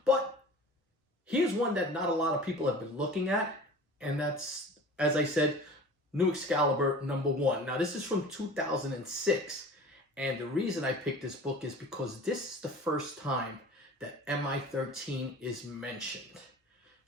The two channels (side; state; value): both; normal; correlation 0.40